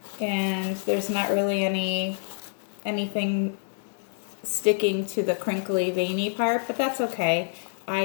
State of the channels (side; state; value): right; silent; digital silence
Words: And there's not really anything sticking to the crinkly veiny part, but that's okay.